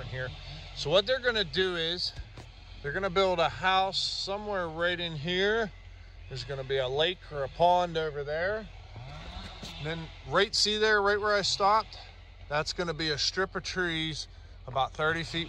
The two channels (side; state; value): both; identical; correlation 1.00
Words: here. So what they're going to do is they're going to build a house somewhere right in here. There's going to be a lake or a pond over there, and then see there, right where I stopped, that's going to be a strip of trees about 30